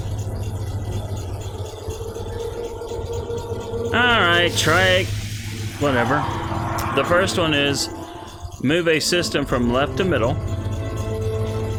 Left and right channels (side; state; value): both; identical; correlation 1.00